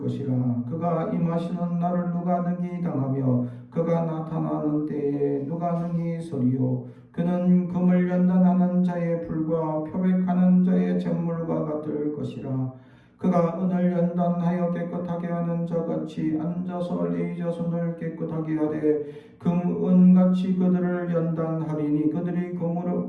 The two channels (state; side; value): identical; both; correlation 1.00